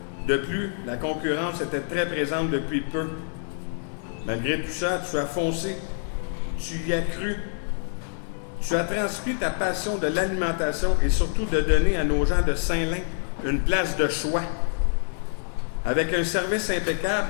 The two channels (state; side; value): silent; right; digital silence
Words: De plus, la concurrence était très présente depuis peu. Malgré tout ça, tu as foncé, tu y as cru. Tu as transmis ta passion de l'alimentation et surtout de donner à nos gens de Saint-Lin une place de choix, avec un service impeccable